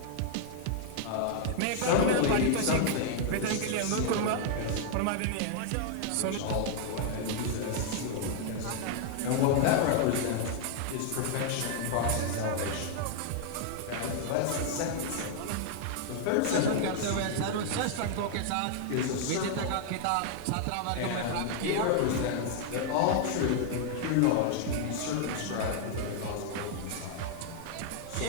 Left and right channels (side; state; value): both; different; correlation 0.00